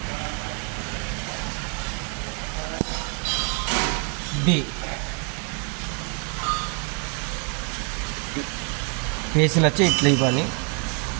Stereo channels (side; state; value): left; quieter; 38.0 dB